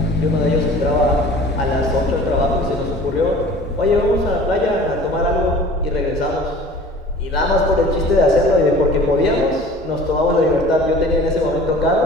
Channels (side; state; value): both; normal; correlation 0.44